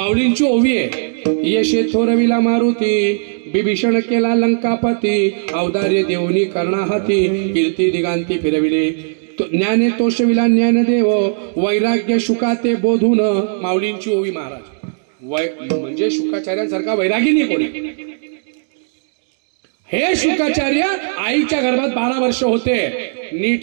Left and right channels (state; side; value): silent; left; digital silence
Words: ओवी आहे. यशे थोरविला मारुती, बिभीषण केला लंकापती, अवदार्य देवनी कर्णाहाती, कीर्ती दिगांती फिरविले, ज्ञाने तोषविला ज्ञानदेव, वैराग्य शुकाते बोधून. माऊलींची ओवी महाराज. म्हणजे शुकाचार्यांसारखा वैरागी नाही कोणी. हे शुकाचार्य आईच्या गर्भात 12 वर्ष होते. नीट